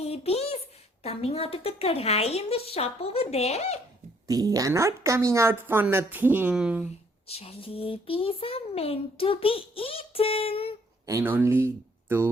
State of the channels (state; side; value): normal; both; correlation 0.65